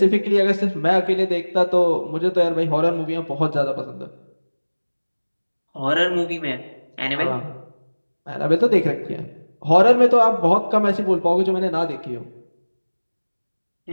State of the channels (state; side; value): inverted; both; correlation -1.00